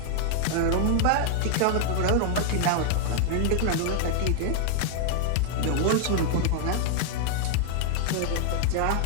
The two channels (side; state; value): both; different; correlation -0.01